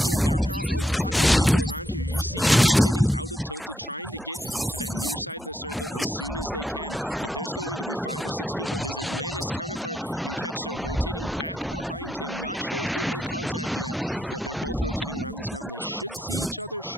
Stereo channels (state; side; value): normal; both; correlation 0.78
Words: There are a lot of people around here. You see rotating out of Tilted, trying to get to that near side of the circle as soon as they can, but there's going to be 5 or 6 people. His Atlantis counterpart in Ketcher rotating back behind him. Not sure if they've made contact yet, but they're both rotating around this mountain. They should see each other